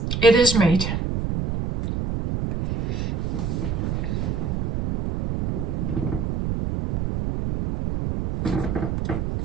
It is made.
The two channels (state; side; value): noise; right; rumble, 1 dB below the sound